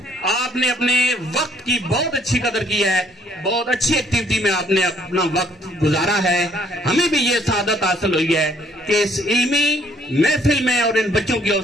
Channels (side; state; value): both; normal; correlation 0.64